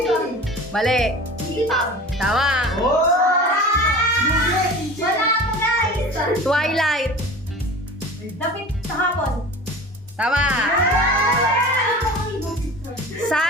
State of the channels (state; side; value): normal; both; correlation 0.37